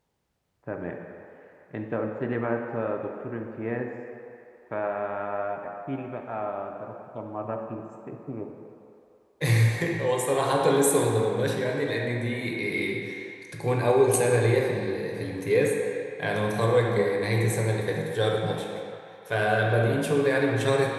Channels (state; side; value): identical; both; correlation 1.00